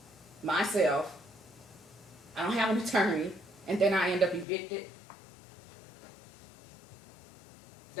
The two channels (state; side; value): drops out; right; at 4.5 s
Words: myself. I don't have an attorney, and then I end up evicted.